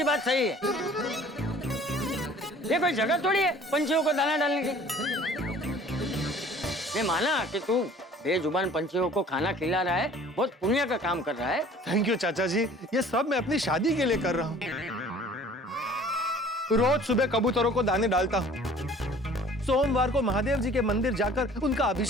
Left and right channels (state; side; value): normal; both; correlation 0.50